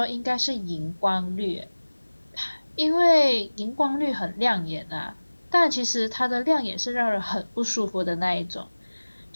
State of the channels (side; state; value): both; inverted; correlation -1.00